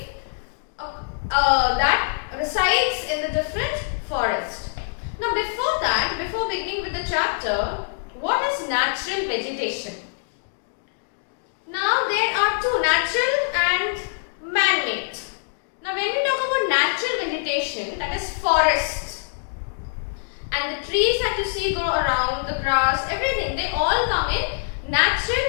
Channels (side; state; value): right; silent; digital silence